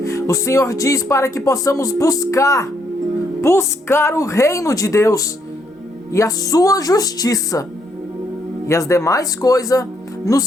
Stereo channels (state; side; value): normal; both; correlation 0.73